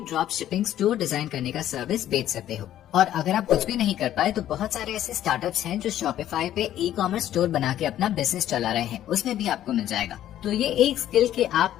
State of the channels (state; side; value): quieter; right; 12.1 dB